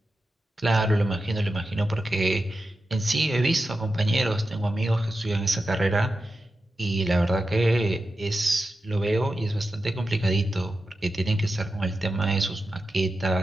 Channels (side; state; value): both; normal; correlation 0.91